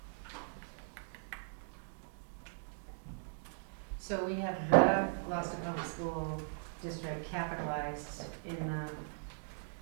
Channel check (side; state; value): left; silent; digital silence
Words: So we have the Gloucester Public School District capitalized in the